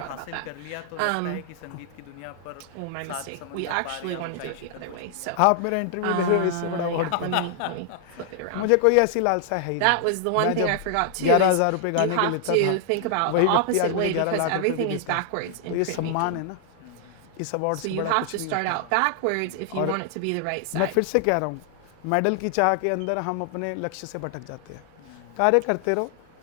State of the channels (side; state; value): both; different; correlation 0.00